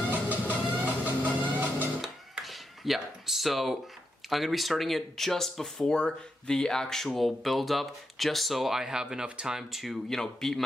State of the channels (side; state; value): both; normal; correlation 0.84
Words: Yeah, so I'm going to be starting it just before the actual build-up, just so I have enough time to, you know, beat